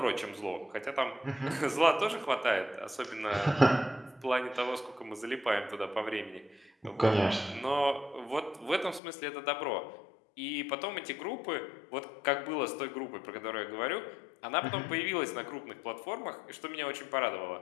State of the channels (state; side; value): drops out; right; at 9.0 s